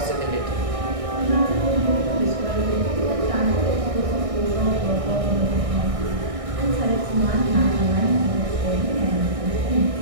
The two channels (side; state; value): left; late; 1.6 ms